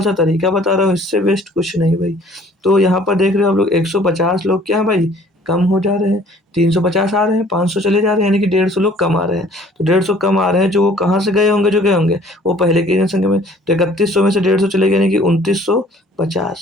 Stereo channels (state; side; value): normal; both; correlation 0.54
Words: सा तरीका बता रहा हूँ, इससे बेस्ट कुछ नहीं भाई। तो यहाँ पर देख रहे हो आप लोग 150 लोग क्या है भाई कम हो जा रहे हैं, 350 आ रहे हैं, 500 चले जा रहे हैं, यानी कि 150 लोग कम आ रहे हैं। तो 150 कम आ रहे हैं, जो वो कहाँ से गए होंगे? जो गए होंगे वो पहले की जनसंख्या में, तो 3100 में से 150 चले गए यानी कि